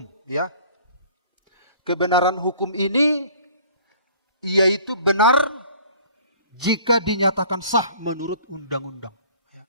ya. Kebenaran hukum ini yaitu benar jika dinyatakan sah menurut undang-undang. Ya.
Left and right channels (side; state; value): both; inverted; correlation -0.52